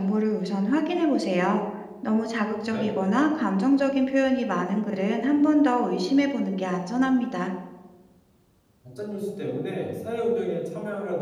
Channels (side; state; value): both; identical; correlation 1.00